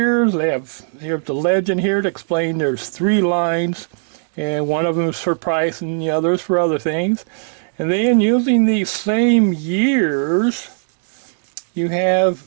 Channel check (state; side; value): silent; left; digital silence